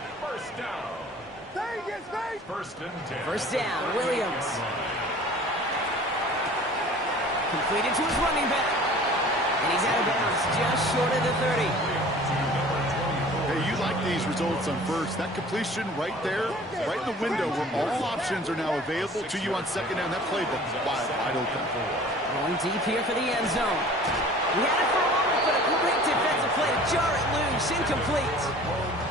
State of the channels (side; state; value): both; normal; correlation 0.46